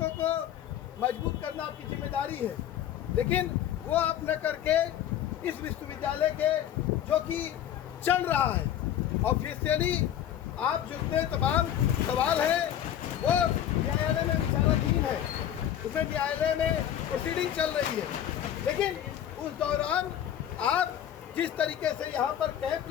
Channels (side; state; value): right; quieter; 10.7 dB